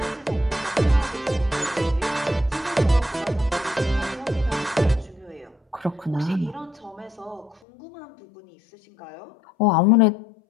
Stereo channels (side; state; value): right; drops out; at 7.6 s